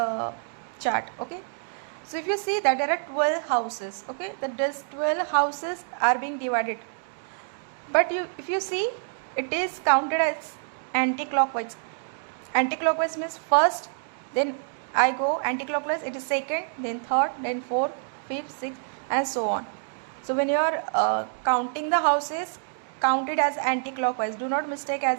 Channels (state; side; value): silent; left; digital silence